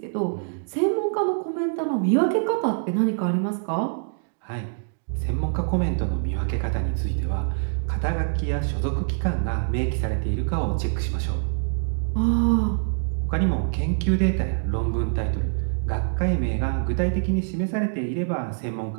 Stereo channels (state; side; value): silent; left; digital silence